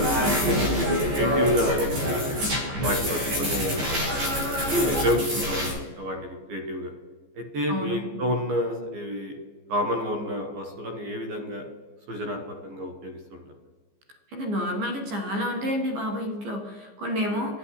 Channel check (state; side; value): late; left; 15 ms